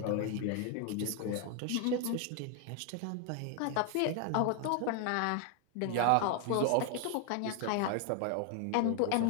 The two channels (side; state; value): both; different; correlation 0.00